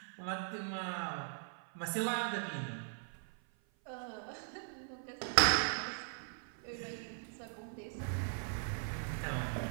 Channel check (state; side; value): silent; left; 51 dB below the other